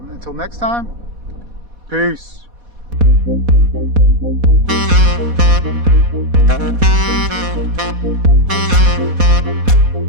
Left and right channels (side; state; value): left; late; 4.1 ms